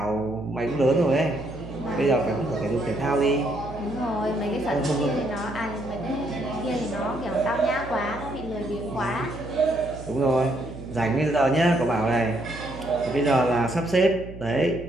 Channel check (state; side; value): noise; right; hum, 13 dB below the sound